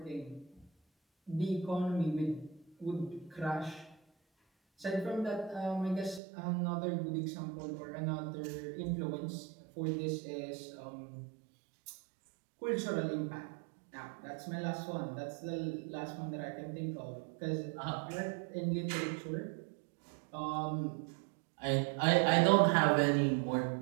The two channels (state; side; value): drops out; left; at 6.2 s